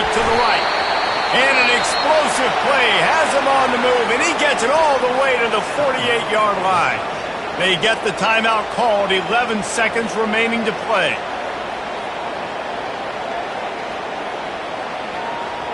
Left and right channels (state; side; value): identical; both; correlation 1.00